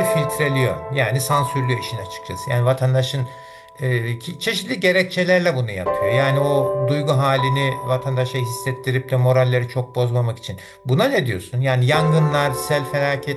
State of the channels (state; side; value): identical; both; correlation 1.00